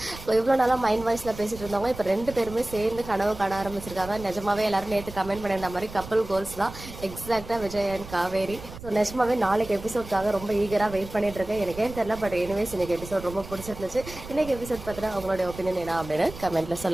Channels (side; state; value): right; noise; rumble, 14 dB below the sound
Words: இவ்வளோ நாளாக மைண்ட் வாய்ஸில் பேசிட்டு இருந்தவங்க இப்போ ரெண்டு பேருமே சேர்ந்து கனவு காண ஆரம்பிச்சிருக்காங்க. நிஜமாவே எல்லாரும் நேற்று கமெண்ட் பண்ணியிருந்த மாதிரி கப்பல் கோல்ஸ் தான் எக்ஸாக்டாக விஜய் அண்ட் காவேரி. ஸோ நிஜமாவே நாளைக்கு எபிசோட்காக ரொம்ப ஈகராக வெயிட் பண்ணிட்டு இருக்கேன். எனக்கே தெரியல, பட் எனிவேஸ் இன்னைக்கு எபிசோட் ரொம்ப பிடிச்சிருந்துச்சு. இன்னைக்கு எபிசோட் பார்த்தீங்கன்னா அவங்களோட ஒப்பீனியன் என்ன அப்படின்னு கமெண்ட்ல